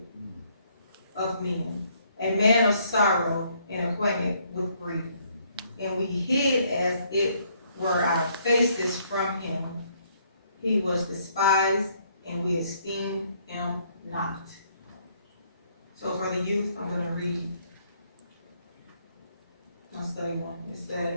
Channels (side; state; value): both; inverted; correlation -0.68